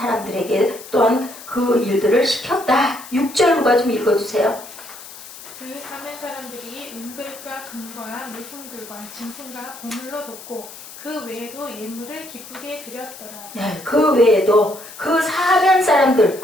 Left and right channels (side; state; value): left; noise; hiss, 16 dB below the sound